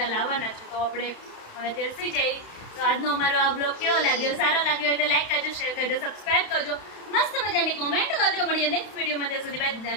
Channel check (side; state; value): right; late; 31 ms